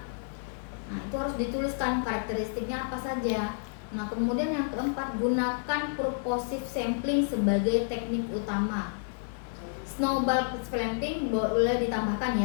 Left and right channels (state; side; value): silent; right; digital silence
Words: Nah, itu harus dituliskan karakteristiknya apa saja. Nah, kemudian yang keempat, gunakan purposive sampling sebagai teknik utama. Snowball sampling boleh ditambahkan